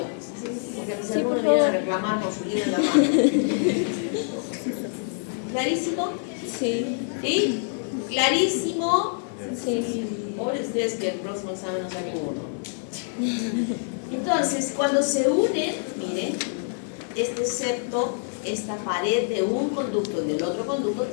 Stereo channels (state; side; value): silent; right; digital silence